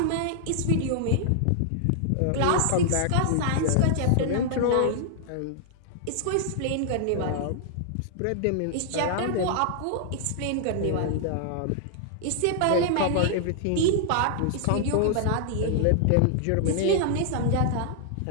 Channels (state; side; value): different; both; correlation -0.01